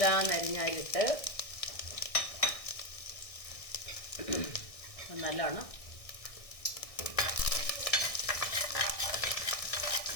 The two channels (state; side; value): late; right; 1.6 ms